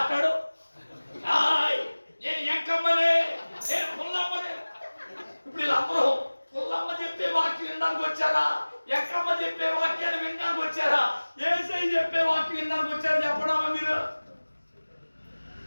నేను ఎంకమ్మనే, నేను పుల్లమ్మనే. ఇప్పుడు వీళ్ళందరూ పుల్లమ్మ చెప్పే వాక్యం వినడానికి వచ్చారా? ఎక్కమ్మ చెప్పే వాక్యాన్ని వినడానికి వచ్చారా? యేసయ్య చెప్పే వాక్యం వినడానికి వచ్చారా? చెప్పడమా మీరు?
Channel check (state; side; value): inverted; both; correlation -1.00